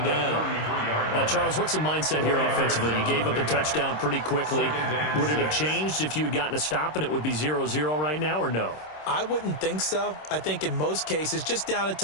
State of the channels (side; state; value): right; late; 26 ms